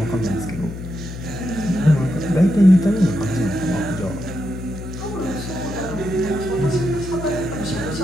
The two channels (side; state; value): left; noise; hum, 9 dB below the sound